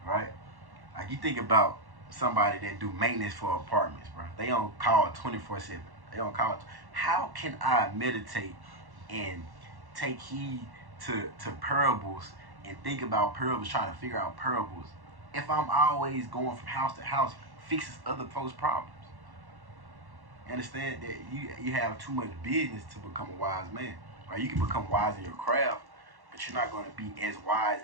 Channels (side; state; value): left; late; 1.1 ms